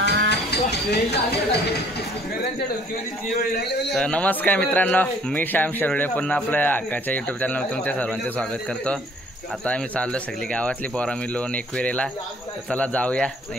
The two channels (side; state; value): both; normal; correlation 0.58